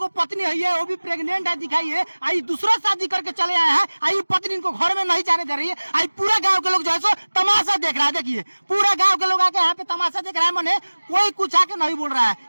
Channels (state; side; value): inverted; both; correlation -1.00